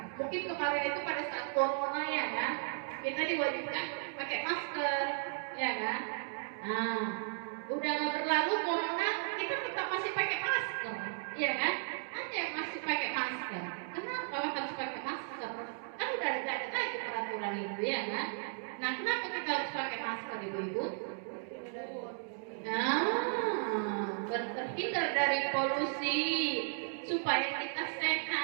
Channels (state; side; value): silent; left; digital silence